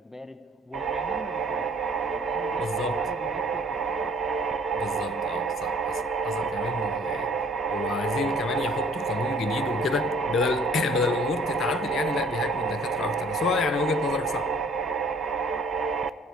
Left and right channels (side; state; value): both; normal; correlation 0.55